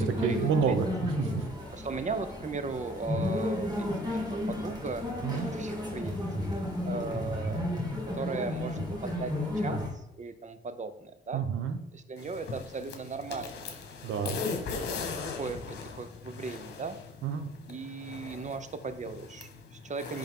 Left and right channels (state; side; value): normal; both; correlation 0.53